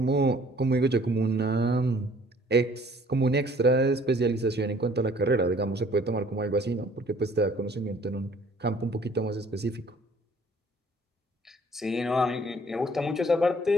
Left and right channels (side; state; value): both; normal; correlation 0.57